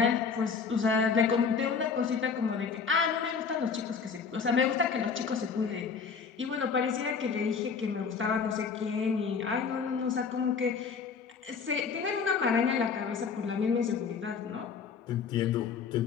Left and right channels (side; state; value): right; quieter; 5.8 dB